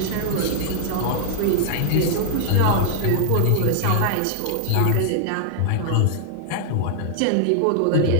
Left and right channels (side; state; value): both; different; correlation 0.00